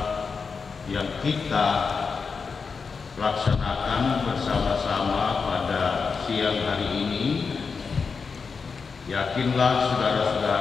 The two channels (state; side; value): quieter; right; 5.2 dB